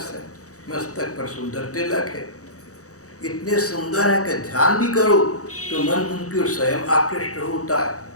है, मस्तक पर सुंदर तिलक है। इतने सुंदर है कि ध्यान भी करो तो मन उनकी ओर स्वयं आकृष्ट होता है।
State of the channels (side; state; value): right; late; 0.66 ms